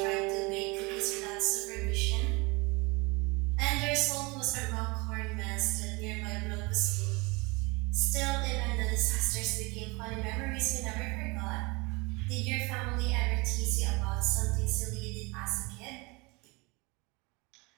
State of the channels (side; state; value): left; quieter; 26.4 dB